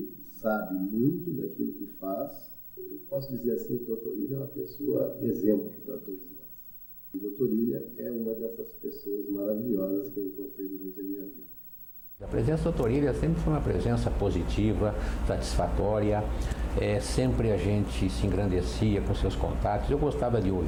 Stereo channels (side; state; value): both; identical; correlation 1.00